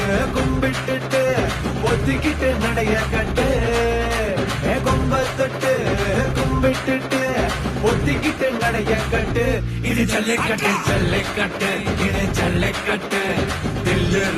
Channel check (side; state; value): both; identical; correlation 1.00